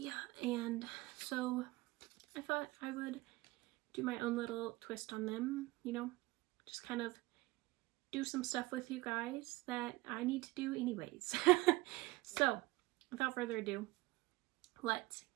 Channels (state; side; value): quieter; left; 20.7 dB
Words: and so I thought I would do my own little twist on them, you know, just kind of do some stuff with you guys that I need to do anyways. So without further ado, let's